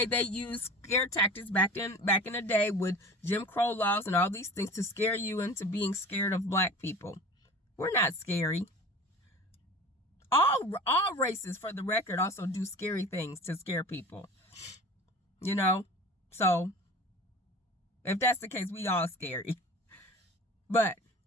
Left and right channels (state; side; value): normal; both; correlation 0.38